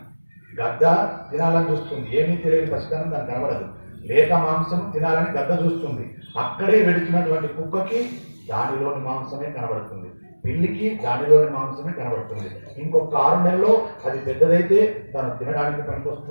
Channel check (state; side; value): inverted; both; correlation -1.00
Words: గద్ద తినాలని చూస్తుంది, ఏమీ తెలియని పసితనం దానికి కనబడదు. లేక మాంసం తినాలని గద్ద చూస్తుంది. అక్కడే వెడుతున్నటువంటి కుక్కకి దానిలోని మాంసమే కనబడుతుంది, పిల్లికి దానిలోని మాంసమే కనబడుతుంది. ఇంకొక 6 నెలల్లో అది పెద్దదైతే తను తినడానికి